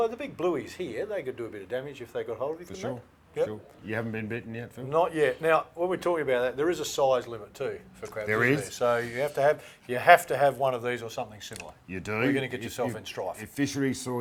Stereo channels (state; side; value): identical; both; correlation 1.00